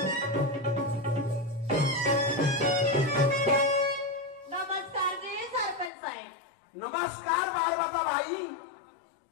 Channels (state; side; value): drops out; right; at 5.9 s